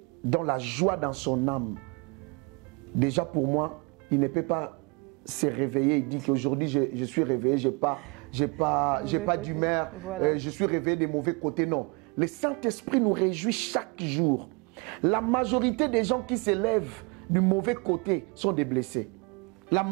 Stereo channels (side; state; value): left; quieter; 30.4 dB